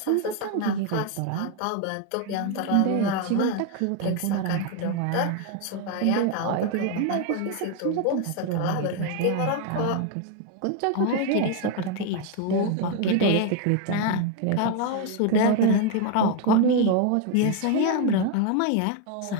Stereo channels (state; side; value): different; both; correlation 0.01